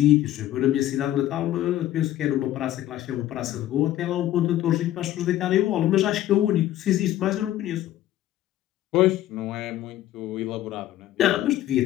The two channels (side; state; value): right; quieter; 13.5 dB